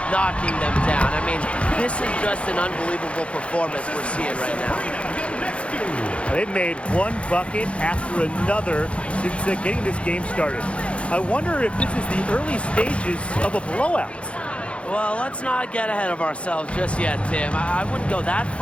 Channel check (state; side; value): late; right; 0.061 ms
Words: knocking them down. I mean, this is just an unbelievable performance we're seeing right now. They've made one bucket after another since getting this game started. I wonder if this is the early stages of a blowout. Well, let's not get ahead of ourselves just yet, Tim. I wouldn't go that